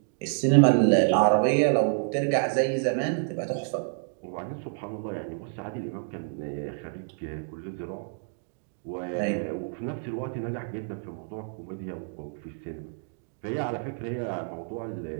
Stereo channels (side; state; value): left; silent; digital silence